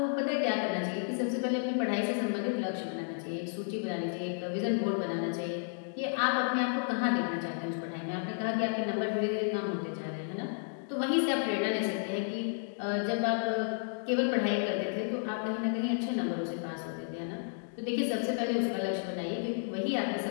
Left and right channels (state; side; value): silent; right; digital silence